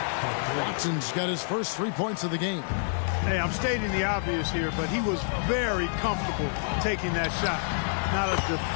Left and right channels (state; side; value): silent; right; digital silence